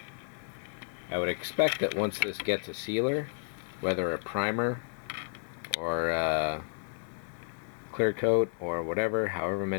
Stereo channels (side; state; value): right; silent; 56 dB below the other